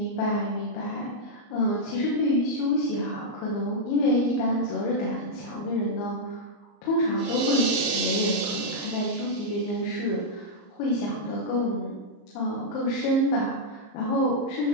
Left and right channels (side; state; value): right; late; 34 ms